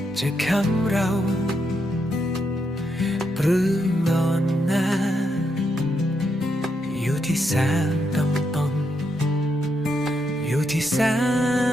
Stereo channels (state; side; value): normal; both; correlation 0.81